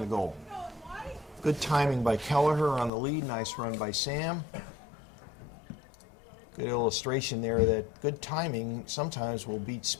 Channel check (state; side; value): drops out; right; at 2.9 s